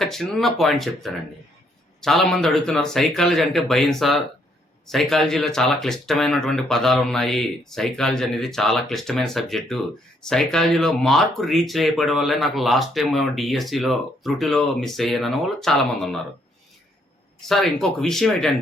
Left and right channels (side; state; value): both; normal; correlation 0.71